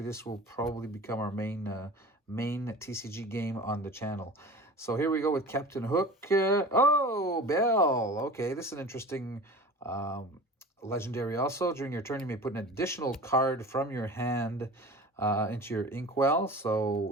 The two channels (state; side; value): normal; both; correlation 0.37